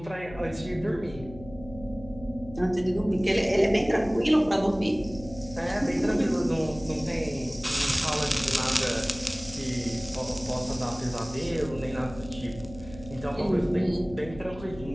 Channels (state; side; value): noise; left; hum, 16 dB below the sound